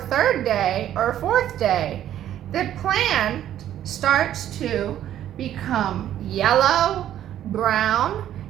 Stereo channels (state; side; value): quieter; left; 11.5 dB